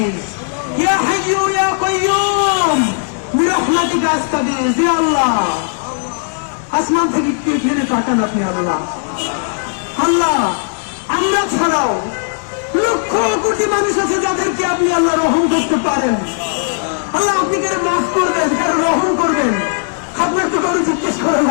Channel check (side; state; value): right; silent; digital silence